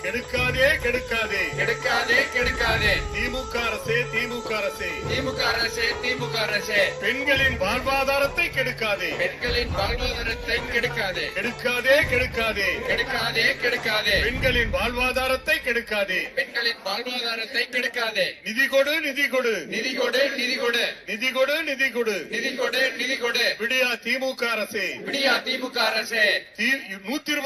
கெடுக்காதே கெடுக்காதே கெடுக்காதே கெடுக்காதே திமுக அரசே திமுக அரசே திமுக அரசே திமுக அரசே பெண்களின் வாழ்வாதாரத்தை கெடுக்காதே பெண்களின் வாழ்வாதாரத்தை கெடுக்காதே கெடுக்காதே கெடுக்காதே கெடுக்காதே கெடுக்காதே பெண்களின் வாழ்வாதாரத்தை கெடுக்காதே பெண்களின் வாழ்வாதாரத்தை கெடுக்காதே நிதி கொடு நிதி கொடு நிதி கொடு நிதி கொடு நிதி கொடு நிதி கொடு நிதி கொடு நிதி கொடு விடியா திமுக அரசே விடியா திமுக அரசே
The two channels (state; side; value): identical; both; correlation 1.00